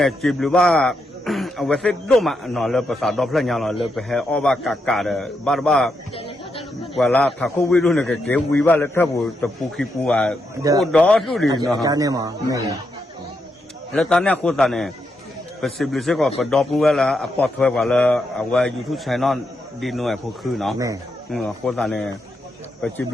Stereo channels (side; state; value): both; normal; correlation 0.82